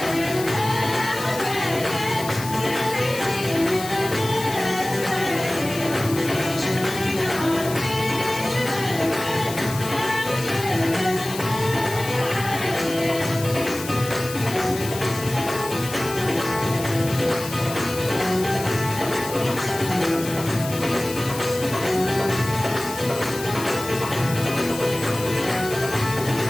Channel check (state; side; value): noise; left; hiss, 11 dB below the sound